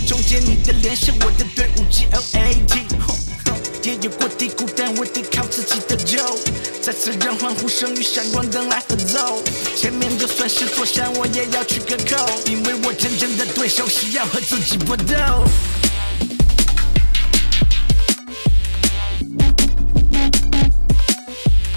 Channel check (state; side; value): inverted; both; correlation -1.00